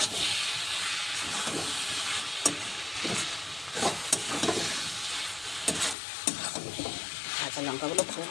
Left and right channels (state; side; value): drops out; right; at 6.0 s